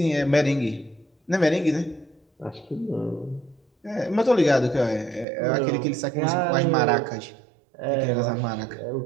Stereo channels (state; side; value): drops out; left; at 5.2 s